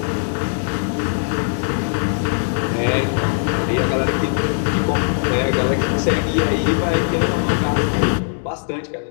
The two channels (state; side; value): silent; right; digital silence